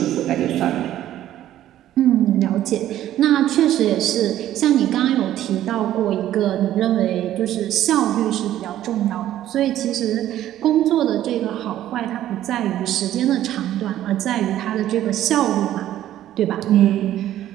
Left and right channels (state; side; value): quieter; left; 12.6 dB